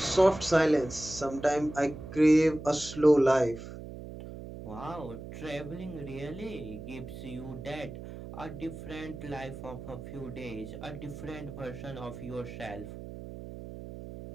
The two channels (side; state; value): right; noise; hum, 11 dB below the sound